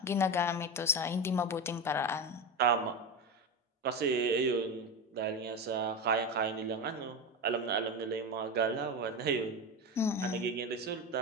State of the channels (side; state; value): both; normal; correlation 0.20